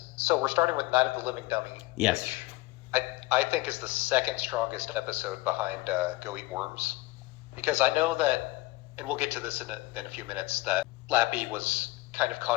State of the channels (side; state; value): right; quieter; 20.6 dB